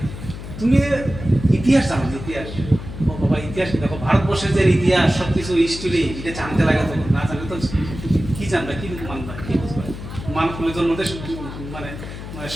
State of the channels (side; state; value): left; noise; hum, 10 dB below the sound